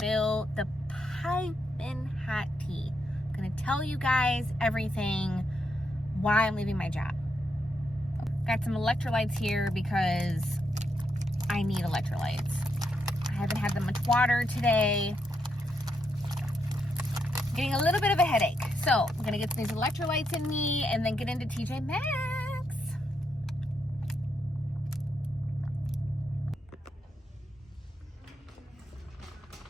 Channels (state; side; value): normal; both; correlation 0.80